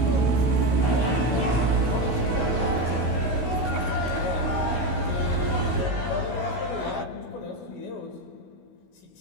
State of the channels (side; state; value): right; late; 16 ms